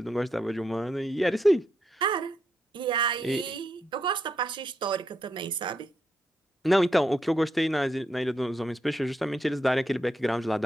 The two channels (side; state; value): both; normal; correlation 0.81